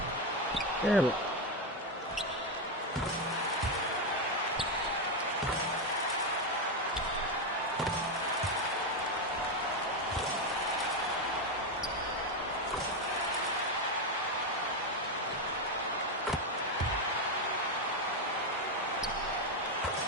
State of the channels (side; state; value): both; normal; correlation 0.08